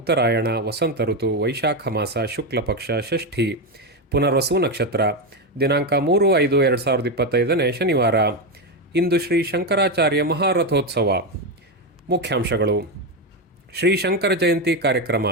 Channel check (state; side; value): normal; both; correlation 0.10